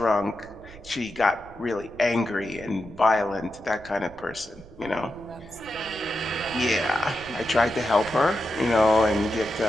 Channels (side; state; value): right; noise; rumble, 20 dB below the sound